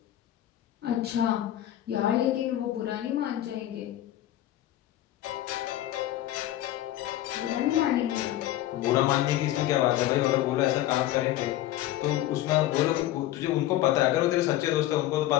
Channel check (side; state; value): right; quieter; 13.9 dB